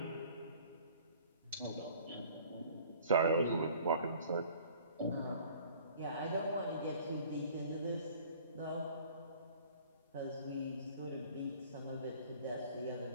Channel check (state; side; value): inverted; both; correlation -0.52